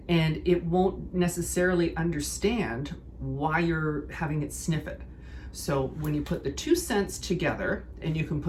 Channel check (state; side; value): identical; both; correlation 1.00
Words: and it won't necessarily understand why you're having it sniff it. So when you put the two scents together, and you can